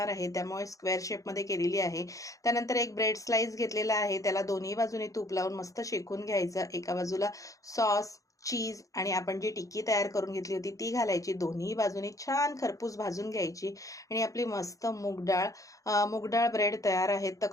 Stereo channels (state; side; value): late; right; 0.16 ms